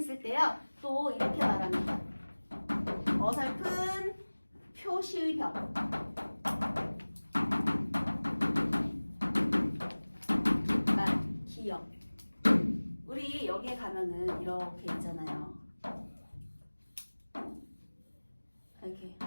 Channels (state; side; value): inverted; both; correlation -1.00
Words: 때요, 또 이렇게 말합니다. 어설픈 표시의 벽. 기억. 우리 여기에 가면은 이렇게 있잖아요. 이렇게